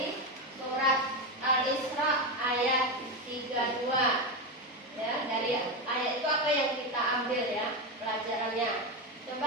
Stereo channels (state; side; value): normal; both; correlation 0.13